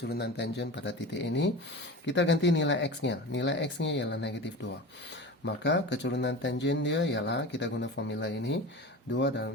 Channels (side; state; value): both; normal; correlation 0.31